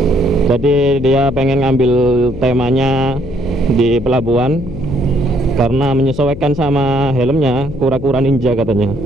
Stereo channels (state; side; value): noise; left; hum, 11 dB below the sound